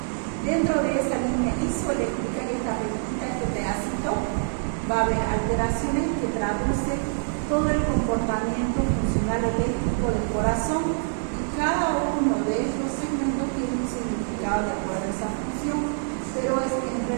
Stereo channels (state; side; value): silent; left; digital silence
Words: Dentro de esa línea isoeléctrica, que esta rectita, este pedacito, va a haber alteraciones que traducen todo el comportamiento funcional eléctrico del corazón y cada uno de estos segmentos tiene un significado de acuerdo a esa función, pero es en